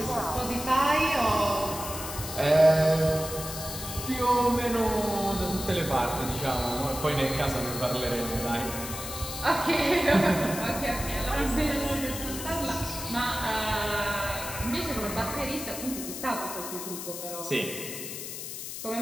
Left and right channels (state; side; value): noise; left; hiss, 8 dB below the sound